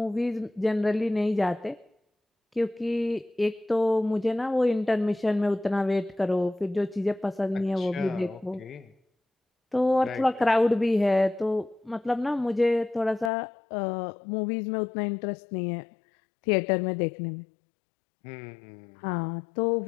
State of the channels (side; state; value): right; drops out; at 13.3 s